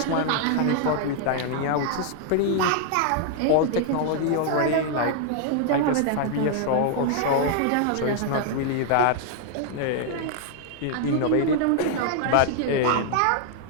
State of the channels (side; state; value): both; different; correlation 0.00